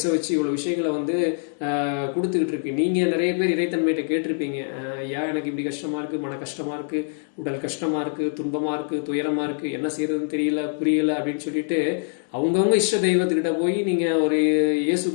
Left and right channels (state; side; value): silent; right; digital silence